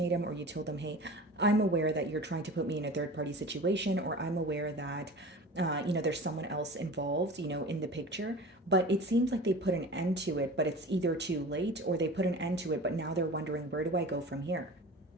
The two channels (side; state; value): both; normal; correlation 0.37